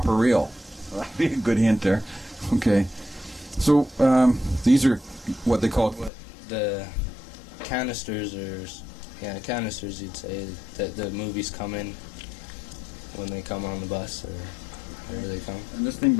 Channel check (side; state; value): right; drops out; at 6.1 s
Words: reel. That'd be a good hint there. Okay. So, these are what they call... The canisters canisters, you'd say, that the movies come in when they come on the bus or wherever they come. And this thing